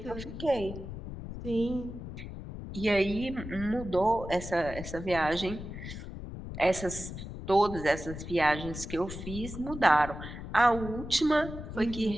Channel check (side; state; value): left; noise; rumble, 9 dB below the sound